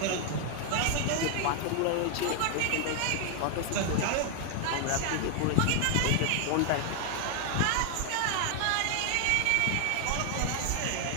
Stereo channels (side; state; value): both; different; correlation 0.00